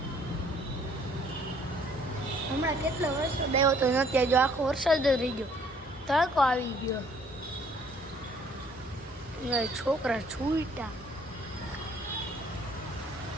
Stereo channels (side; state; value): both; normal; correlation 0.60